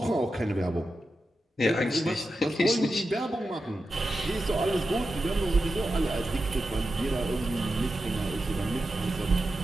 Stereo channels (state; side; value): normal; both; correlation 0.90